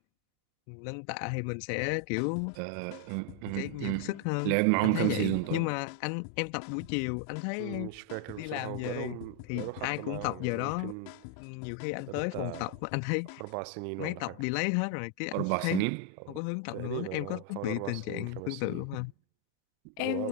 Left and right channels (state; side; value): different; both; correlation 0.00